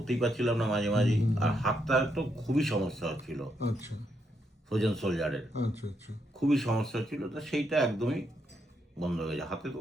পারছিলাম না মাঝে মাঝেই। আর হাতটা তো খুবই সমস্যা হচ্ছিল, আচ্ছা ফ্রোজেন সোলজারের আচ্ছা আচ্ছা। খুবই সমস্যা ছিল। তো সেইটা একদমই বন্ধ হয়ে গেছে, হাতে তো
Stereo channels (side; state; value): both; normal; correlation 0.79